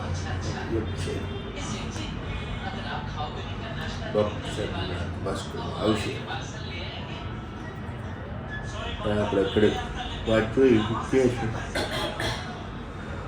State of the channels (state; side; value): identical; both; correlation 1.00